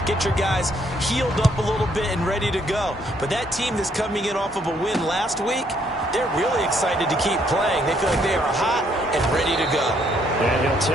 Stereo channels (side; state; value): both; normal; correlation 0.69